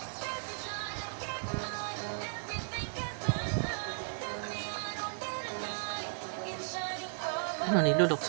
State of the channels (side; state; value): left; silent; digital silence